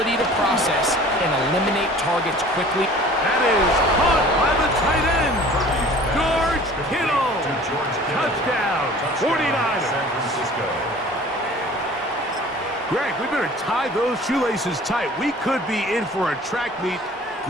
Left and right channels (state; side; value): normal; both; correlation 0.46